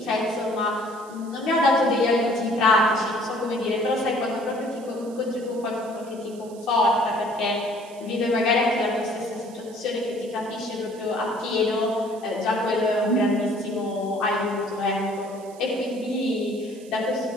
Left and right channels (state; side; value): noise; right; hiss, 23 dB below the sound